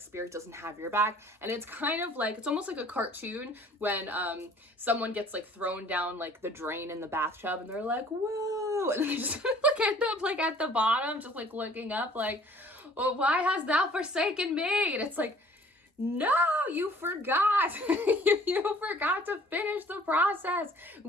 spirit doesn't have your back. And it's kind of like, it's almost like a cartoon when someone gets like thrown down like the drain in the bathtub and they're like, whoa. And they just like end up like at the bottom, just like looking up like, well, why hast thou forsaken me? And it's like, no, you forgot. You forgot to finish the process.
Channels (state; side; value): normal; both; correlation 0.54